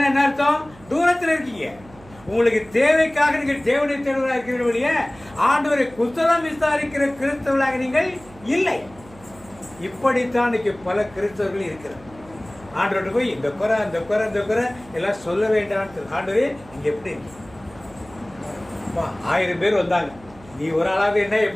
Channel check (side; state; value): right; noise; hum, 23 dB below the sound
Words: என்ன அர்த்தம்? தூரத்தில் இருக்கீங்க. உங்களுக்கு தேவைக்காக நீங்கள் தேவனை தேடுவதாக இருக்கிற வழிய ஆண்டவரை குசலம் விசாரிக்கிற கிறிஸ்தவர்களாக நீங்கள் இல்லை. இப்படித்தான் இன்னைக்கு பல கிறிஸ்தவர்கள் இருக்கிறார். ஆண்டவர்கிட்ட போய் இந்த குறை அந்த குறை இந்த குறை எல்லாம் சொல்ல வேண்டாம். ஆண்டவரே நீங்க எப்படி 1000 பேர் வந்தாங்க, நீ ஒரு ஆளாவது என்ன